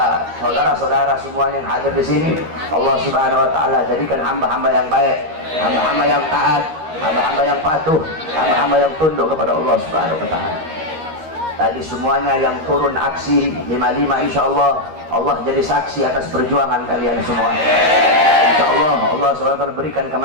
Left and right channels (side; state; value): left; late; 13 ms